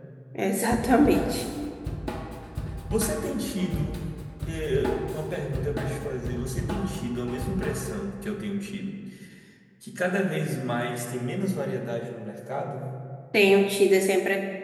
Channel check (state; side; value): identical; both; correlation 1.00